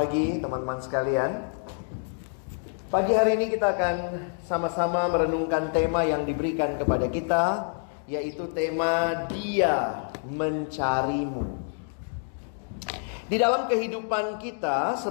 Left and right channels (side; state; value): right; silent; 60 dB below the other